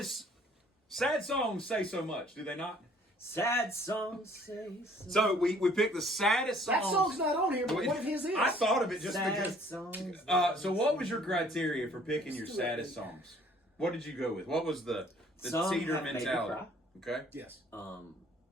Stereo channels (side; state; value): both; normal; correlation 0.58